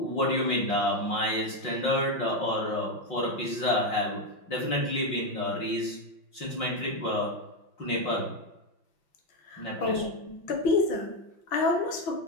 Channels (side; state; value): right; late; 5.6 ms